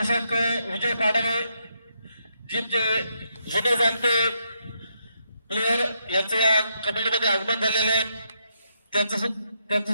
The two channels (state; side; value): inverted; both; correlation -0.79